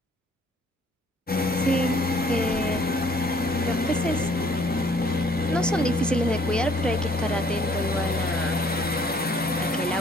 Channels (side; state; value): both; normal; correlation 0.60